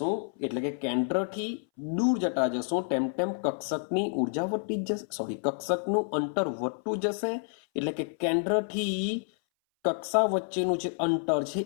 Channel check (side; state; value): right; silent; 58 dB below the other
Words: એટલે કે કેન્દ્રથી દૂર જતા જશું તેમ તેમ કક્ષકની ઉર્જા વધતી જ જશે, કક્ષકનું અંતર વધતું જશે. એટલે કે કેન્દ્રથી કક્ષા વચ્ચેનું જે અંતર છે